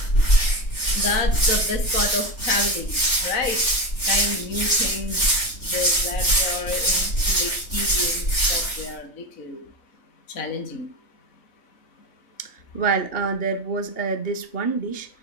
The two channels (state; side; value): late; right; 3.4 ms